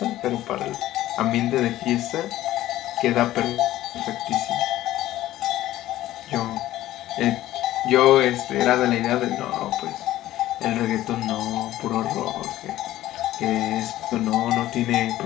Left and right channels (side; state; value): right; quieter; 14.6 dB